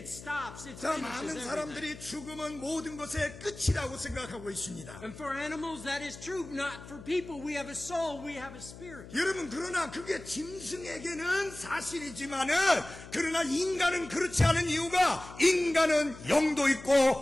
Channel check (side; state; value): left; noise; hum, 16 dB below the sound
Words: stops. It 자, finishes 많은 everything. 사람들이 죽음은 모든 것의 끝이라고 생각하고 있습니다. And for animals that is true. Not for people. We have a soul. We have a spirit. 여러분, 그러나 그게 짐승에게는 사실이지만은 그러나 인간은 그렇지 않은 이유가 인간은 영도 있고